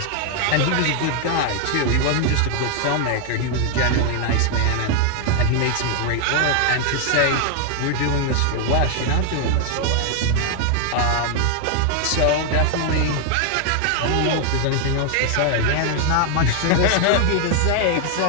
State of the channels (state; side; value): different; both; correlation 0.00